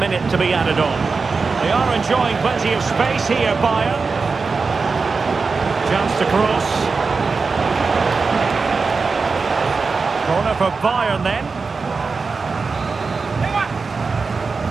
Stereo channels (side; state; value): left; quieter; 4.5 dB